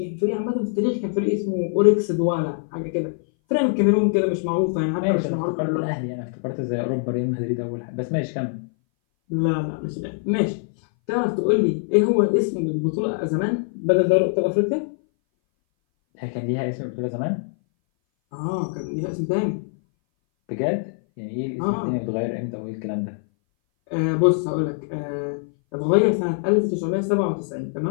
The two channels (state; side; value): silent; right; 60 dB below the other